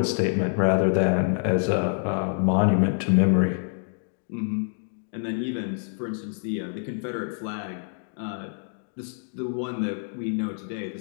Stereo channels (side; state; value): right; silent; 61 dB below the other